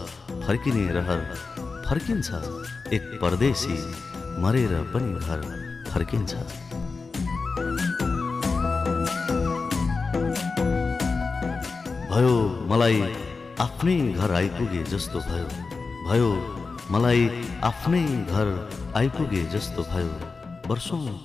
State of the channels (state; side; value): quieter; right; 4.3 dB